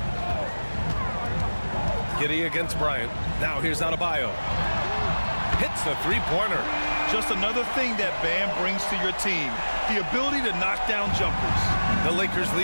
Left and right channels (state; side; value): inverted; both; correlation -1.00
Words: Giddey against Bryant. Now here's Adebayo. Hits a three-pointer. Just another thing that Bam brings to your team, the ability to knock down jumpers. The Lakers